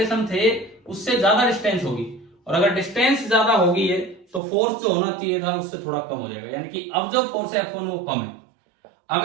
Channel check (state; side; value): drops out; left; at 4.4 s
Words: थे उससे ज्यादा डिस्टेंस होगी, और अगर डिस्टेंस ज्यादा होगी है तो फोर्स जो होना चाहिए था उससे थोड़ा कम हो जाएगा, यानी कि अब जो फोर्स है F1 वो कम है।